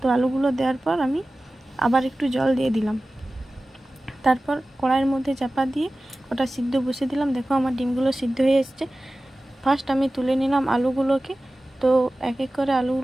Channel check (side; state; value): both; normal; correlation 0.96